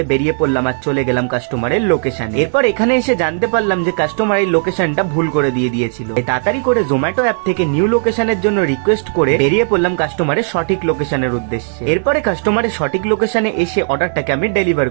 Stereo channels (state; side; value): silent; left; digital silence